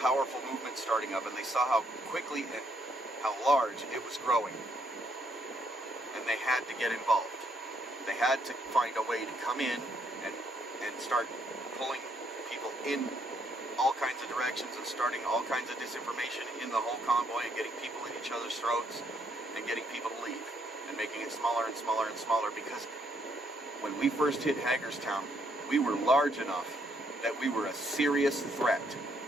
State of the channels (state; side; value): normal; both; correlation 0.72